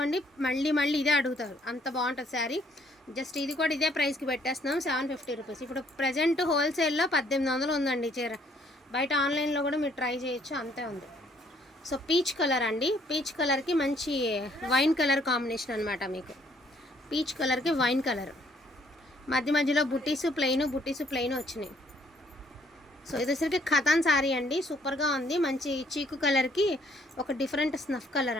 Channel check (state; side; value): normal; both; correlation 0.65